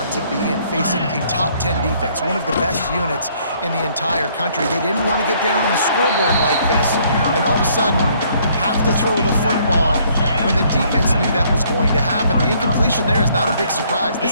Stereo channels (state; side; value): inverted; both; correlation -0.64